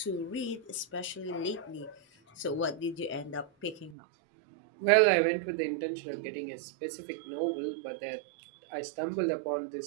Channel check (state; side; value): drops out; left; at 4.0 s